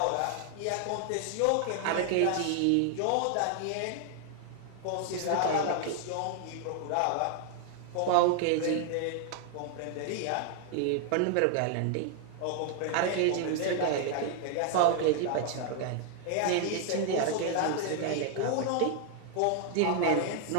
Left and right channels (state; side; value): different; both; correlation 0.00